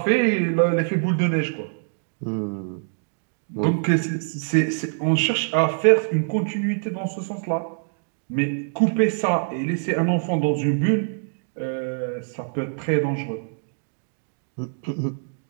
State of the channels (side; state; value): left; silent; digital silence